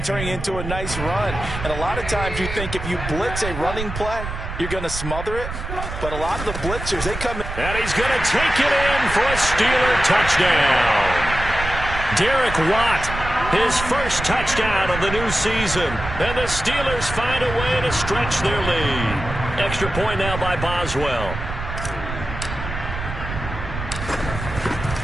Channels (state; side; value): noise; right; rumble, 7 dB below the sound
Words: turning it into a nice run. And a lot of times you think if you blitz a running play, you're going to smother it. But a lot of the blitzers, they come in. And he's going to take it in for a Steeler touchdown. Derek Watt, his first touchdown of the new season. And the Steelers find a way to stretch their lead. Extra point now by Boswell.